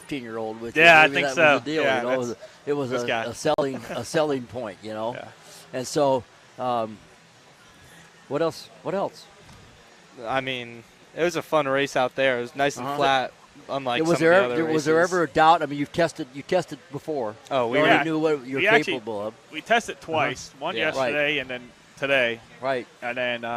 with you. Yeah, Maybe I think that was so. the deal. Yeah, it was a selling point. And so, what else? I mean, it was a fun race out there. It was nice and flat, unlike was some of the other races. Was there ever a doubt? I mean, you tested before. Oh, we already knew what you're capable of. We tested twice. One yesterday and then today. Right. And then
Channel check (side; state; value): both; identical; correlation 1.00